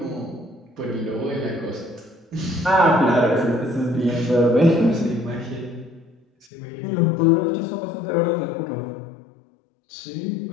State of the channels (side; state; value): right; drops out; at 6.5 s